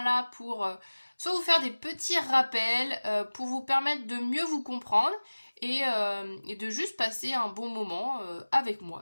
pour soit vous faire des petits rappels, pour vous permettre de mieux vous comprendre et de juste passer un bon moment avec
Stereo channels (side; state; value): both; inverted; correlation -1.00